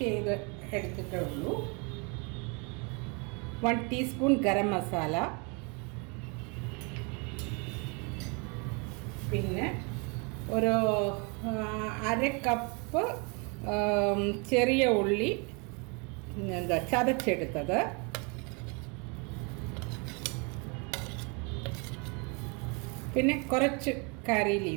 ചെയ്ത് എടുത്തിട്ടേ ഉള്ളൂ. 1 ടീസ്പൂൺ ഗരം മസാല, പിന്നെ ഒരു 1/2 കപ്പ് ചെറിയ ഉള്ളി ചതച്ചെടുത്തത്, പിന്നെ കുറച്ച് കറി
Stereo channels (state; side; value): quieter; left; 32.4 dB